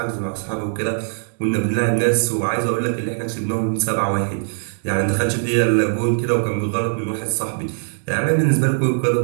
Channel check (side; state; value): left; silent; digital silence